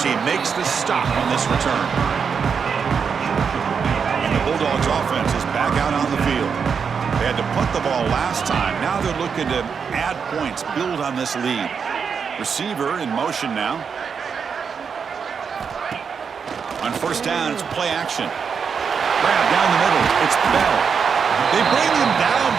team makes the stop on this return. And the Bulldogs offense is back out on the field. They had to punt the ball last time. Now they're looking to add points, build on this lead. Receiver in motion now. On 1st down, it's play action. Grab down the middle. It's Bell. They bring him down,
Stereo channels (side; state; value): left; quieter; 6.3 dB